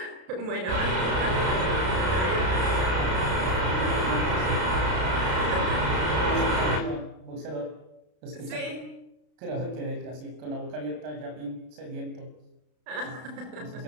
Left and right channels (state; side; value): late; left; 33 ms